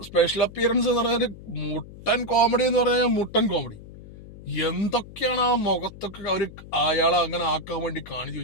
സ്പെഷ്യൽ അപ്പിയറൻസ് എന്ന് പറഞ്ഞാൽ മുട്ടൻ കോമഡി എന്ന് പറഞ്ഞാൽ മുട്ടൻ കോമഡി. എന്തൊക്കെയാണ് ആ മുഖത്തൊക്കെ അവര് അയാളെ അങ്ങനെ ആക്കാൻ വേണ്ടി കാണിച്ചു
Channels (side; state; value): left; noise; hum, 17 dB below the sound